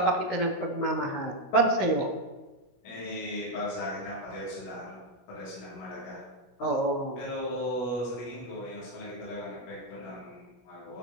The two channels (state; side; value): late; right; 16 ms